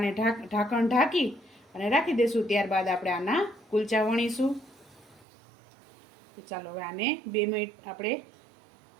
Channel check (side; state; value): left; drops out; at 5.2 s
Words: ઢાંકણ ઢાંકી અને રાખી દઈશું. ત્યારબાદ આપણે આના કુલચા વણીશું. તો ચાલો હવે આને 2 મિનિટ આપણે